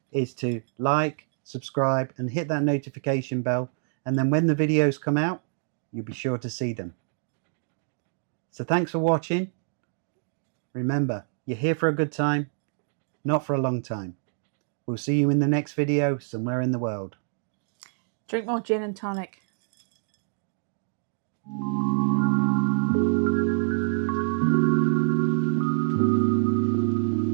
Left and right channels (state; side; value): silent; left; digital silence